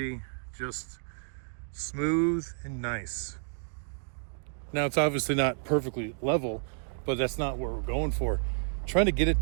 just smooth and nice. Now, it's obviously not perfectly level, but that's not what we're going for. Trying to get it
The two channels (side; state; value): left; silent; digital silence